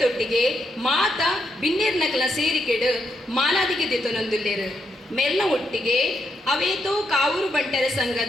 ಮಾತ ಬಿನ್ನೇರ್ನಕಲ ಸೇರಿಕೆಡು ಮಾಲಾದಿಗೆ ದೆತೊನೊಂದುಲ್ಲೇರು ಮೆರ್ನ ಒಟ್ಟಿಗೆ ಅವೇತೋ ಕಾವೂರು ಬಂಟರ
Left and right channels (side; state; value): both; normal; correlation 0.80